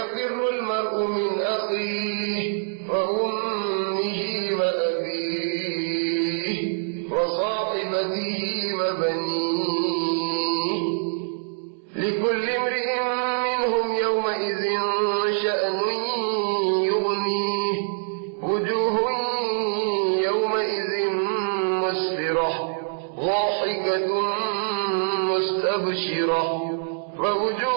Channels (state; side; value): silent; left; 62 dB below the other